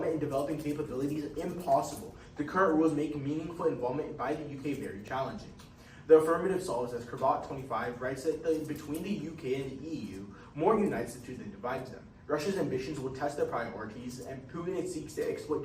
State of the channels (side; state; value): both; identical; correlation 1.00